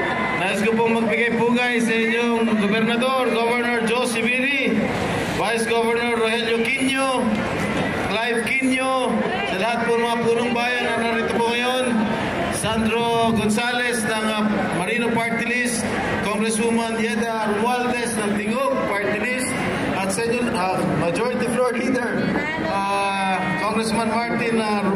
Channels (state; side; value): identical; both; correlation 1.00